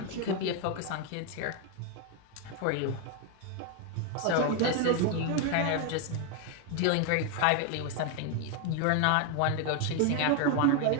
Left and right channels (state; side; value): different; both; correlation 0.01